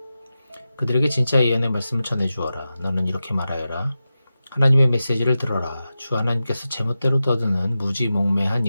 그들에게 진짜 예언의 말씀을 전해주어라. 너는 이렇게 말하여라. 하나님의 메시지를 들어라. 주 하나님께서 제멋대로 떠드는 무지몽매한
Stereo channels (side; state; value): both; inverted; correlation -0.93